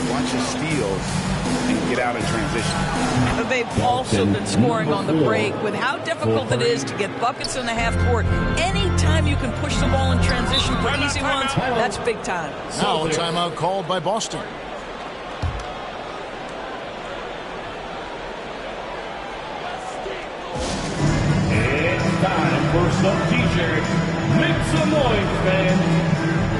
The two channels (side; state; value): both; identical; correlation 1.00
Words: bunch of steals and get out in transition. But they've also been scoring on the break. With how difficult it is to get buckets in the half court, anytime you can push the ball in transition for easy ones, that's big time. Now a timeout called by Boston. Time for some t-shirts. Make some noise, fans.